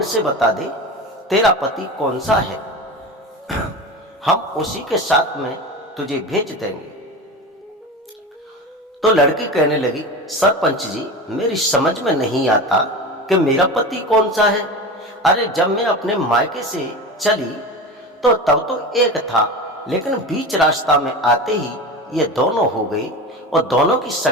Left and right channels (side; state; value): both; normal; correlation 0.28